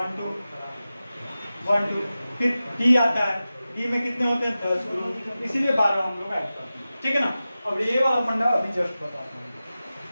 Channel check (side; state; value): both; inverted; correlation -0.95